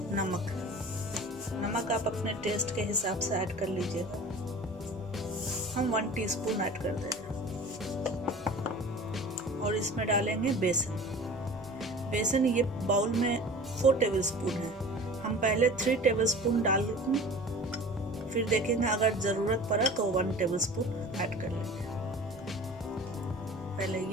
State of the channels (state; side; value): normal; both; correlation 0.40